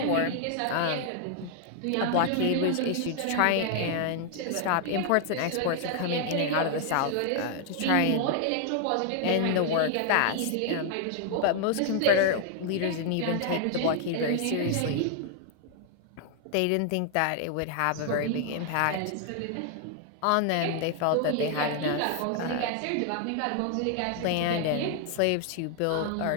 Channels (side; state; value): both; different; correlation 0.00